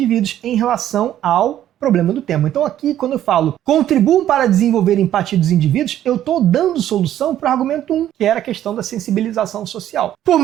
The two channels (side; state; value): left; quieter; 11.8 dB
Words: em relação ao problema do tema. Então aqui, quando eu falo contribuam para desenvolver empatia dos indivíduos, eu estou dando solução para o argumento 1, que era a questão da sensibilização social. Por